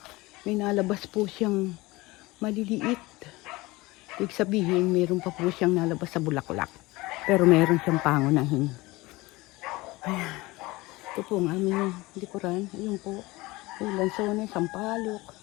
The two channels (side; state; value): right; quieter; 21.3 dB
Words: may nalabas po siyang maliliit. Ibig sabihin, meron pa po siyang nalabas sa bulaklak. Pero meron siyang pangunahin. Ayan. Ito po ang aming likuran. Ayun po. May lansones, sampalok.